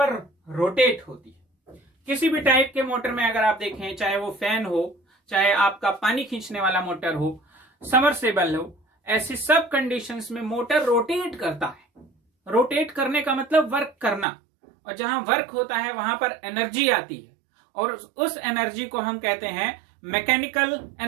रोटेट होती है। किसी भी टाइप के मोटर में अगर आप देखें, चाहे वो फैन हो, चाहे आपका पानी खींचने वाला मोटर हो, समरसेबल हो, ऐसी सब कंडीशंस में मोटर रोटेट करता है। रोटेट करने का मतलब वर्क करना, और जहां वर्क होता है वहां पर एनर्जी आती है, और उस एनर्जी को हम कहते हैं मैकेनिकल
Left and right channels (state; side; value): drops out; left; at 14.2 s